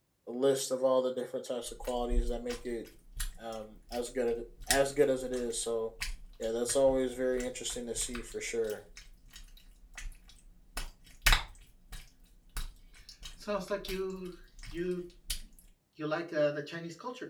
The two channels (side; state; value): both; identical; correlation 1.00